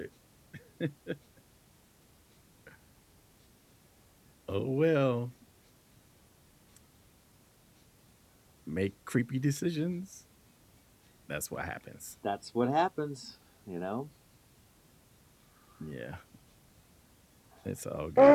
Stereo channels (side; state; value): both; identical; correlation 1.00